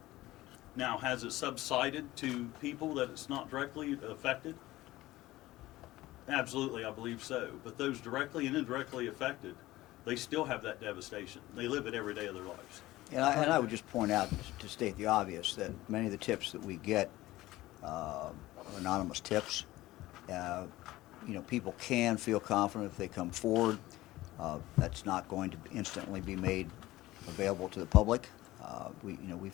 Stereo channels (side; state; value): right; quieter; 17.3 dB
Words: Now, has it subsided to people that it's not directly affected? Absolutely, I believe so. But those directly and indirectly affected, they still have that devastation. They live it every day of their lives. And I would just point out, to state the obvious, that many of the tips that we get are anonymous tips. You know, people can feel confident if they come forward. That's not going to instantly be made available to the public.